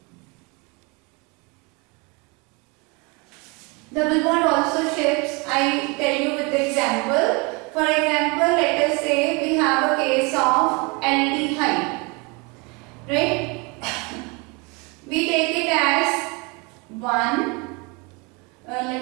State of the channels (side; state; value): left; quieter; 28.5 dB